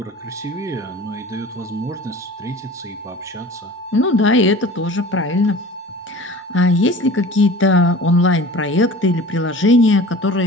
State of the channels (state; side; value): normal; both; correlation 0.40